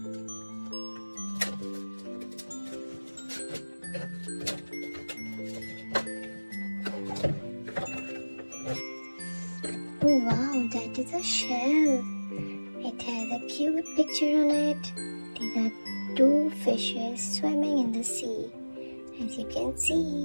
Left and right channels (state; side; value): inverted; both; correlation -1.00